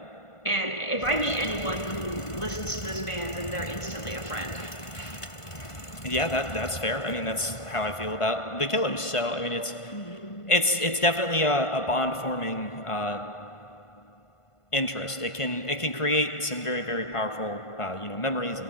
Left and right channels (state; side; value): late; right; 1.5 ms